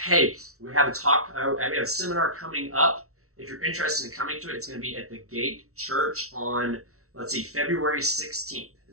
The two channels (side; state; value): left; late; 0.63 ms